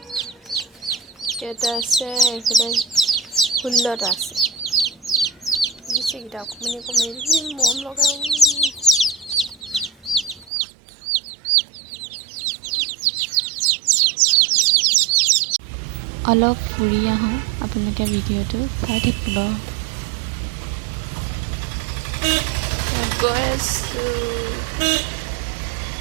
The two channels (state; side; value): drops out; left; at 10.5 s